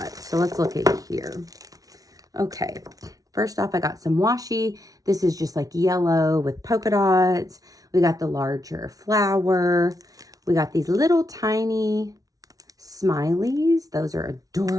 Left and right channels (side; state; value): left; late; 0.18 ms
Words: So let's look at here. Okay, first off, I got some washi. This is just like yellow with polka dots. We got the larger flower. We got these little tiny smileys. Those are